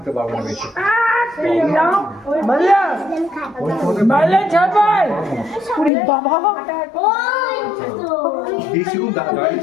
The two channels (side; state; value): right; drops out; at 5.9 s